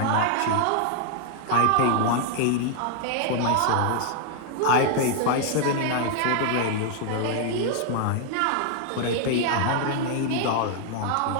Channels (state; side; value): different; both; correlation 0.00